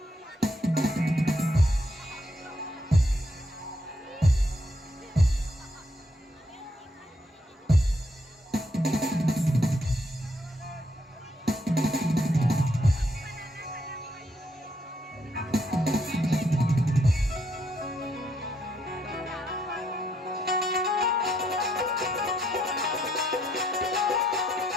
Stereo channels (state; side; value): normal; both; correlation 0.74